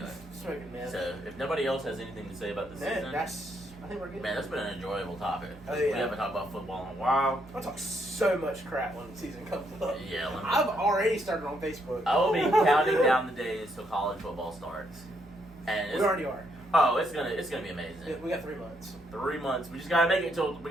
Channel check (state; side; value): normal; both; correlation 0.74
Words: Smoking mess. so if nobody else has anything to say about the season, I think we're good. man, that's been an enjoyable topic. Oh, yeah. We haven't talked about football in a while. I'll talk so much crap when the season comes up. Yeah, I've already started on Facebook. I will be counting down the days till college football starts, and We already are. Oh, it's gonna be amazing. We got 3 months. 3 months. We just gotta make it